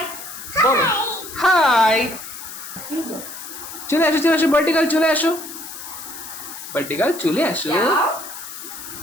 বলো হাই। চলে আসো ভার্টিকাল, চলে আসো ভার্টিকাল, চলে আসো।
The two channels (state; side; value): noise; left; hiss, 11 dB below the sound